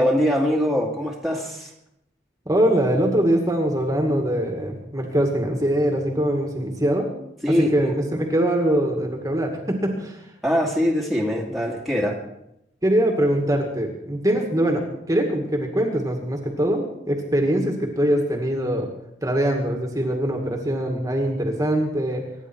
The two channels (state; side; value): normal; both; correlation 0.76